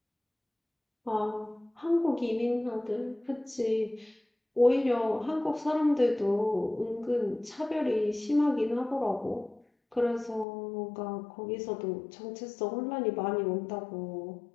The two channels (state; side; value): drops out; right; at 10.5 s